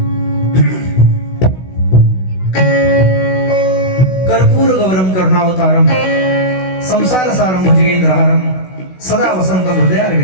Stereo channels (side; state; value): right; late; 16 ms